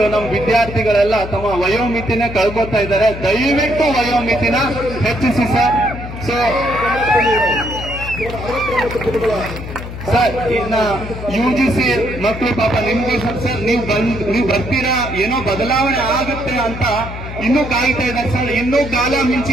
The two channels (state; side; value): noise; left; hum, 9 dB below the sound